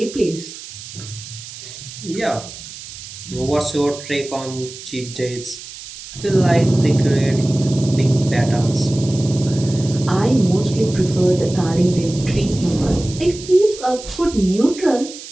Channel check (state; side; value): noise; right; hiss, 14 dB below the sound